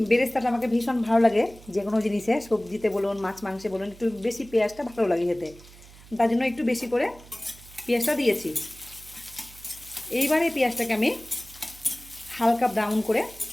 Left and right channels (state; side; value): noise; right; hum, 21 dB below the sound